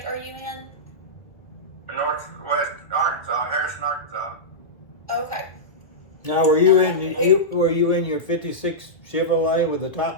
are you in? Northwest Arkansas, Harrison, Arkansas. Okay. Now, were you in your '56 Chevrolet with the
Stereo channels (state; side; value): late; right; 1.8 ms